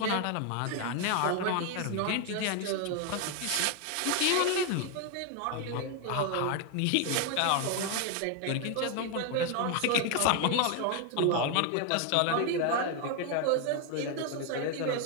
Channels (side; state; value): both; different; correlation 0.01